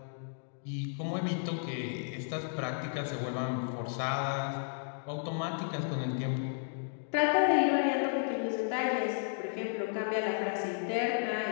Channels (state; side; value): silent; right; digital silence